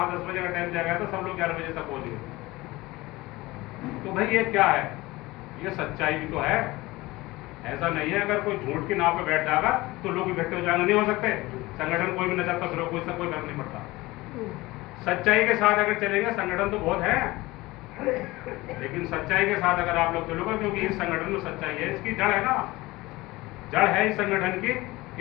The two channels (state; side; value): quieter; right; 20.3 dB